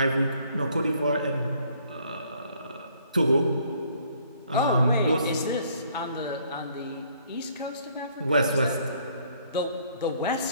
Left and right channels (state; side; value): inverted; both; correlation -0.63